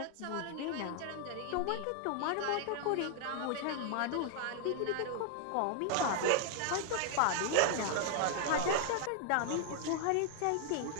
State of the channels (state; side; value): different; both; correlation 0.00